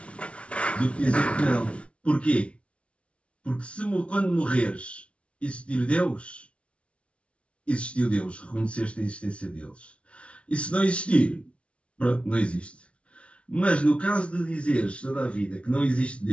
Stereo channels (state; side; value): late; right; 0.061 ms